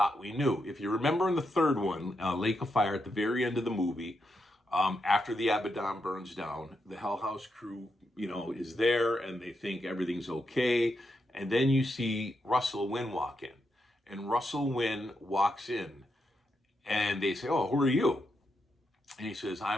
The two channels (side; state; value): both; normal; correlation 0.83